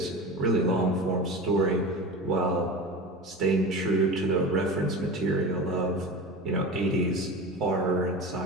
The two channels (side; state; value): both; normal; correlation 0.30